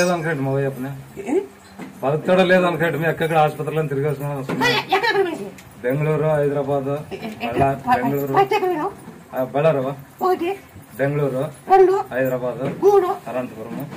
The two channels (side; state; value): both; identical; correlation 1.00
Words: అనుకోండి మా చెప్పిన బతుకుతాడో లేదో అనుకోండి మీ ఎక్కడ ఆసుపత్రిలో తిరిగేస్తున్నాం బెంగళూరు హైదరాబాద్ బెంగళూరు బళ్ళారు బెంగళూరు హైదరాబాద్ అనంతపురం